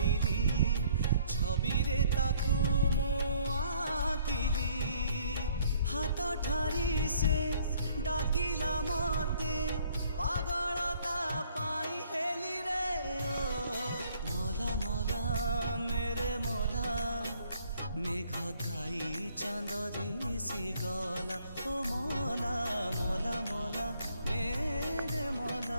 छवि रे ताकू मु आकिली हाथ ठारी से डाकिला मते पागलता पाई हेली रे ओ मोला मोला मेरे मोला मेघ खाई चांद दिसी गला ओ मोला मोला मोला मेरे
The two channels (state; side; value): inverted; both; correlation -0.62